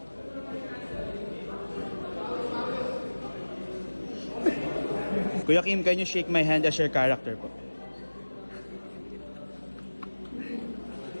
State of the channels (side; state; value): both; inverted; correlation -1.00